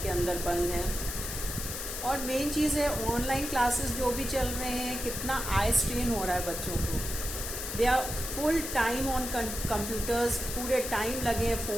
के अंदर बंद हैं. और मेन चीज़ है ऑनलाइन क्लासेस जो भी चल रहे हैं, कितना आई स्ट्रेन हो रहा है बच्चों को. They are full time on computers, पूरे टाइम लगे हैं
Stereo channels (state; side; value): noise; left; hiss, 5 dB below the sound